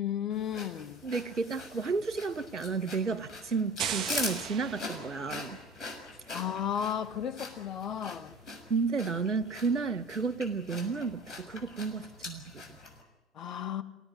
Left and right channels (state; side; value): normal; both; correlation 0.41